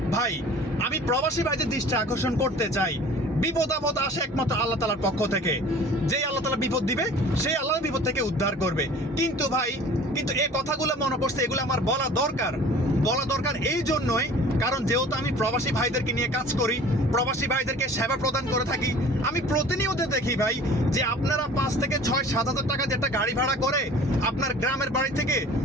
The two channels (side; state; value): both; normal; correlation 0.46